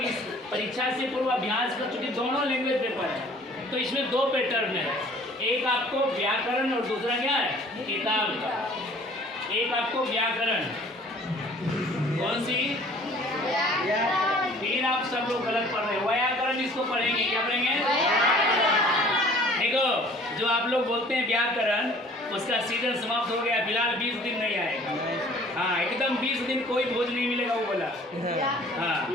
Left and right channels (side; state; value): both; normal; correlation 0.52